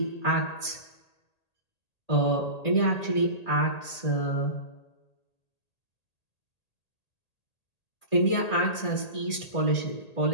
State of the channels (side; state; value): right; late; 1.8 ms